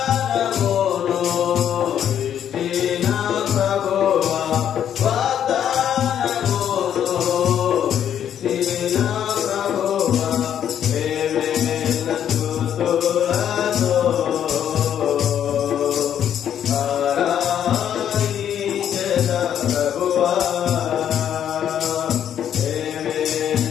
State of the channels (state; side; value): quieter; right; 9.6 dB